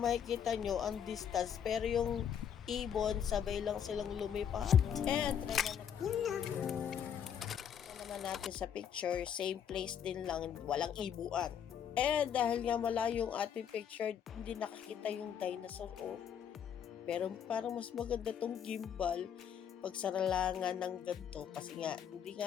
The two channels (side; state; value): right; quieter; 8.5 dB